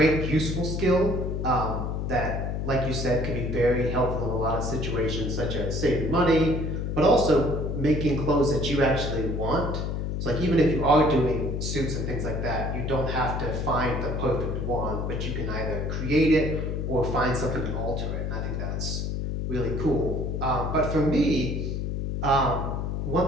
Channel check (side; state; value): left; noise; hum, 2 dB below the sound